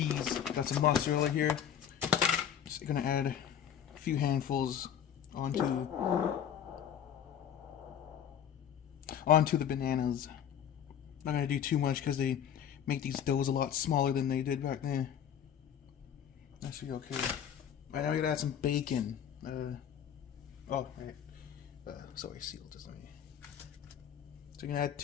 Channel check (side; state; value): right; quieter; 9.0 dB